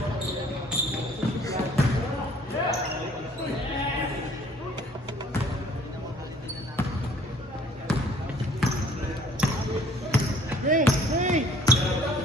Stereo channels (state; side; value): normal; both; correlation 0.56